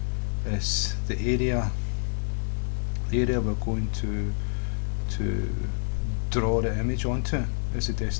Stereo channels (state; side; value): silent; right; digital silence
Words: is the area we're going to draw the image onto is the